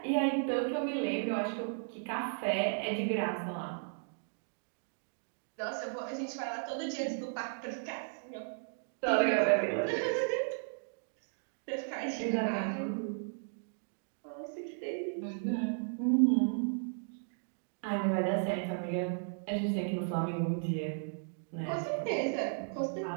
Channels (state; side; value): silent; left; digital silence